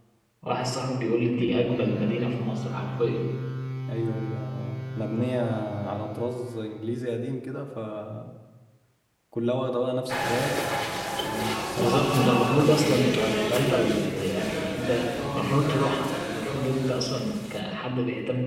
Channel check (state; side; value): identical; both; correlation 1.00